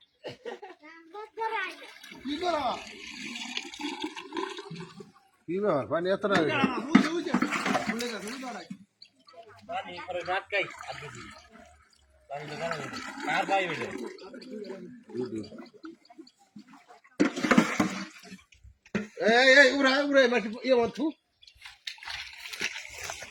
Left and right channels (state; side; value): identical; both; correlation 1.00